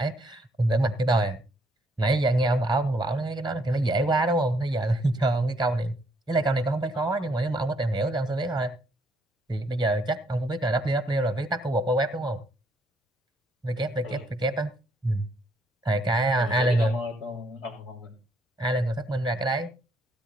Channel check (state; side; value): normal; both; correlation 0.70